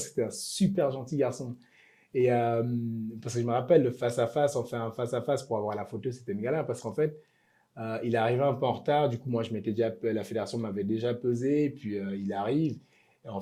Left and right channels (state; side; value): identical; both; correlation 1.00